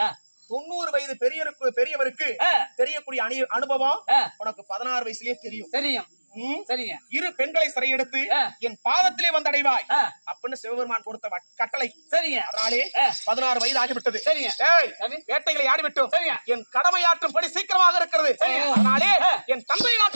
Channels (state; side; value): inverted; both; correlation -1.00